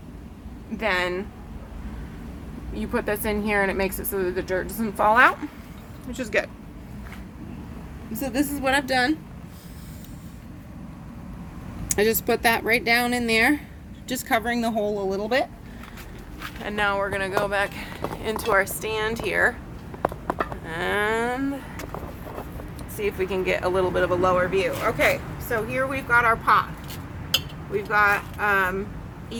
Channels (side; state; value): both; identical; correlation 1.00